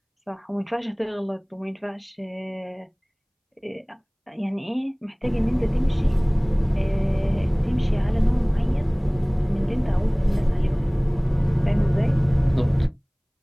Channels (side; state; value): both; identical; correlation 1.00